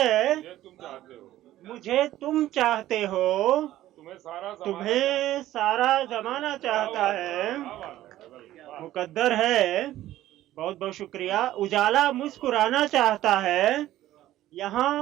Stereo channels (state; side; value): quieter; left; 14.2 dB